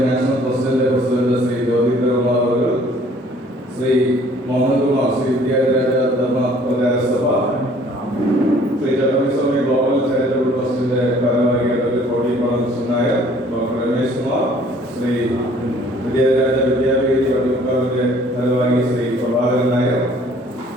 നാഷണൽ പ്രസിഡന്റ് ശ്രീ ജ്യോതികുമാർ അവർ, ശ്രീ മോഹൻകുമാർ ശ്രീ വിദ്യാരാജ ധർമ്മ പ്രചാരസഭ, ശ്രീ ചെറുപ്പി സ്വാമി ഗ്ലോബൽ ചാരിറ്റബിൾ ട്രസ്റ്റിന്റെ ഭാരവാഹികൾ കോടിപ്പാടം കൃഷ്ണൻ നായർ, ഡോക്ടർ രമേശ് കുമാർ, ശ്രീ വിദ്യാരാജ വിദ്യാപീഠ വട്ടിയൂർക്കാവിന്റെ ഭാരവാഹി ശ്രീ പ്രഭാകരൻ നായർ,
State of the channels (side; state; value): both; normal; correlation 0.56